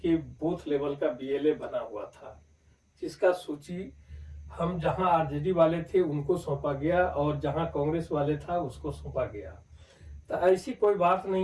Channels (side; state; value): both; identical; correlation 1.00